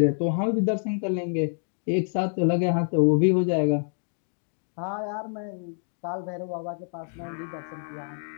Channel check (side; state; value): right; silent; 56 dB below the other